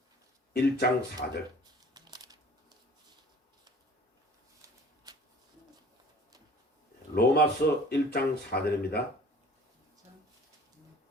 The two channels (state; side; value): normal; both; correlation 0.49